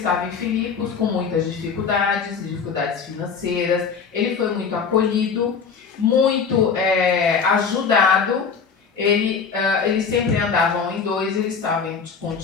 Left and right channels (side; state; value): right; quieter; 5.8 dB